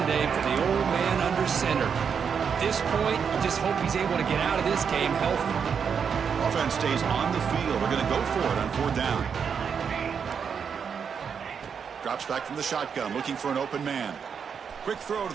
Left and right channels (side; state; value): left; quieter; 6.8 dB